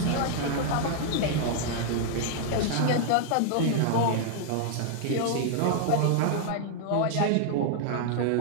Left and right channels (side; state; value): both; different; correlation 0.00